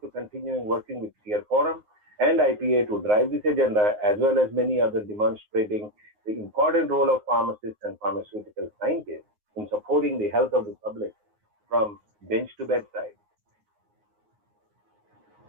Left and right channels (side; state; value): left; late; 9.6 ms